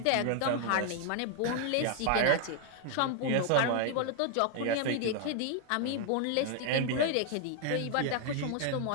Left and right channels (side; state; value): both; different; correlation 0.00